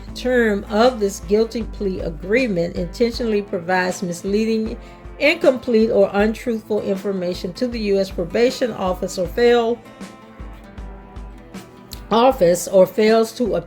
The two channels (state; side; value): identical; both; correlation 1.00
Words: term of this guilty plea agreement, intentionally provides misleading, incomplete, or untruthful information to the U.S. Probation Office, or fails to